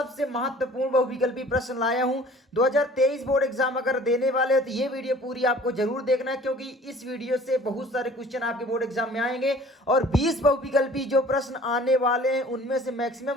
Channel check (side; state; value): both; normal; correlation 0.49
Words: महत्वपूर्ण बहुविकल्पी प्रश्न लाया हूं। 2023 बोर्ड एग्जाम अगर देने वाले हो तो ये वीडियो पूरी आपको जरूर देखना है, क्योंकि इस वीडियो से बहुत सारे क्वेश्चन आपके बोर्ड एग्जाम में आएंगे और 20 बहुविकल्पी जो प्रश्न आने वाले हैं उनमें से